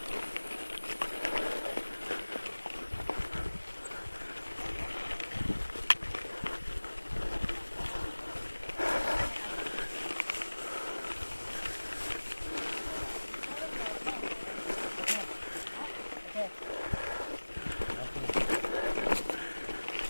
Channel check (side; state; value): both; inverted; correlation -1.00